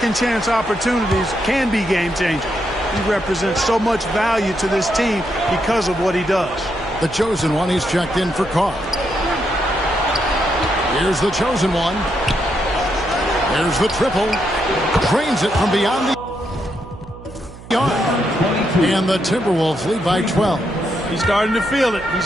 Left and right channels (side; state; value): right; noise; hum, 17 dB below the sound